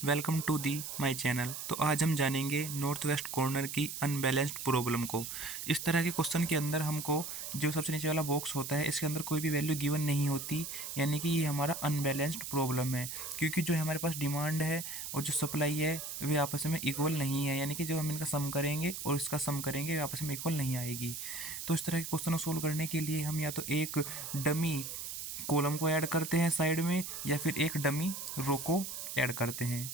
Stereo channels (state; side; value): noise; right; hiss, 7 dB below the sound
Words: welcome to the my channel. तो आज हम जानेंगे नॉर्थ वेस्ट कॉर्नर की अनबैलेंस्ड प्रॉब्लम को। इस तरह के क्वेश्चन के अंदर हमको जो सबसे नीचे वाला बॉक्स होता है इसके अंदर कोई भी वैल्यू गिवन नहीं होती, यानी कि ये हमारा अनबैलेंस्ड प्रॉब्लम है, क्योंकि जो हमारे पास डिमांड है और जो सप्लाई है वे आपस में इक्वल नहीं है, यानी कि जो हम इनका सम करेंगे और इसका सम करेंगे वे आपस में इक्वल नहीं आएगी। तो इस तरह के क्वेश्चन को सोल्व करने के लिए हम या तो एक डमी कॉलम को ऐड करते हैं साइड में, या फिर एक डमी रो को ऐड करते हैं।